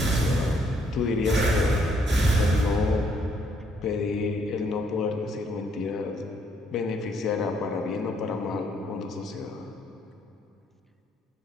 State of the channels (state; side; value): normal; both; correlation 0.70